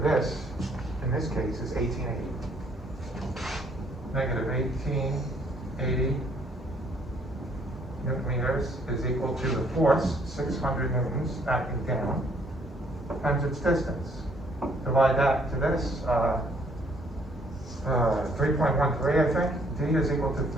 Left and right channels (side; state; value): both; normal; correlation 0.65